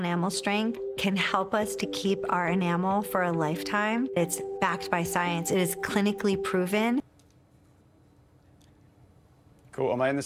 strength, can help us to keep our enamel for a lifetime. It's backed by science. It is clinically proven. Cool. Am I in the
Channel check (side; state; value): both; identical; correlation 1.00